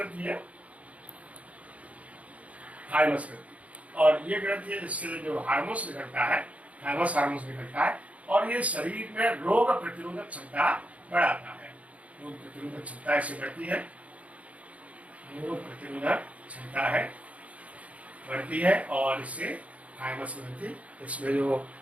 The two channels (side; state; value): left; late; 0.067 ms